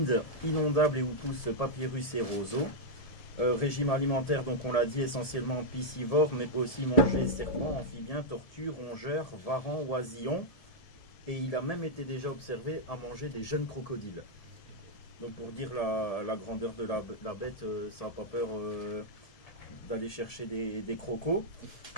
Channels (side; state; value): right; late; 1.7 ms